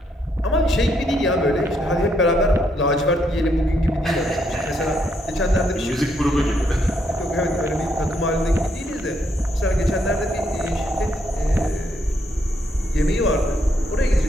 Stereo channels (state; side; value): normal; both; correlation 0.75